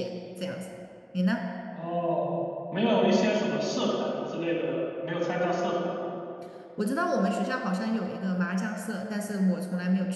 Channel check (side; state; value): both; identical; correlation 1.00